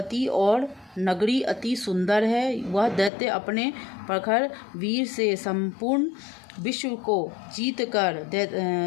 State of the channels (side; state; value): right; drops out; at 3.1 s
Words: और नगरी अति सुंदर है। वह दैत्य अपने प्रखर वीर से संपूर्ण विश्व को जीतकर